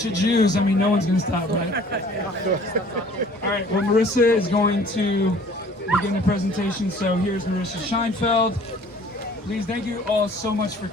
of Jews. I mean, no one's going to stop, right? All right. Well, Marissa is going to begin the presentation. So here's Marissa Scheinfeld. Please, thank you all so much for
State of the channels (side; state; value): both; normal; correlation 0.52